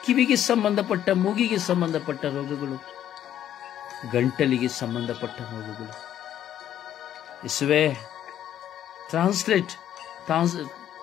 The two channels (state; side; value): quieter; right; 11.0 dB